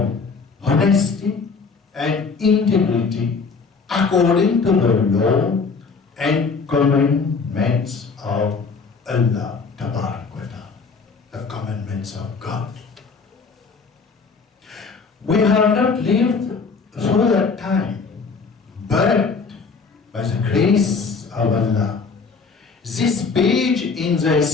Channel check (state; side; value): quieter; right; 4.9 dB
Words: honesty and integrity according to the law and commandments of Allah Ta'ala. commandments of God. We have not lived through that time, but by the grace of Allah, this page in the